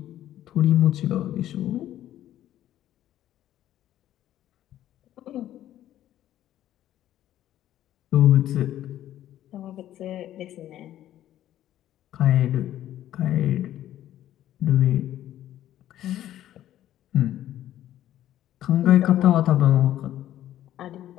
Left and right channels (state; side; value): quieter; right; 12.6 dB